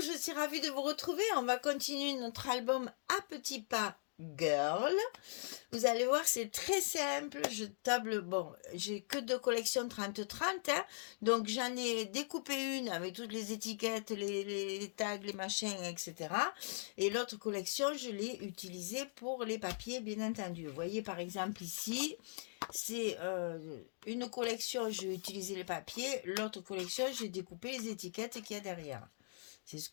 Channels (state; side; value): silent; right; digital silence